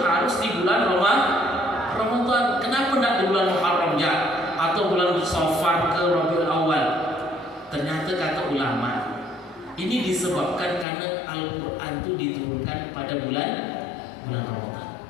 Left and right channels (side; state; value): right; drops out; at 10.9 s